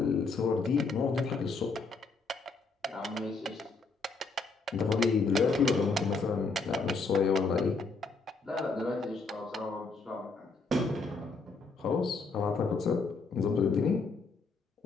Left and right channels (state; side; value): quieter; right; 4.1 dB